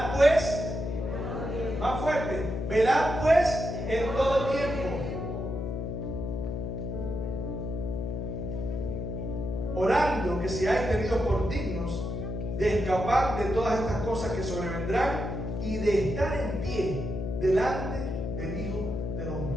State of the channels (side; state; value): left; noise; hum, 4 dB below the sound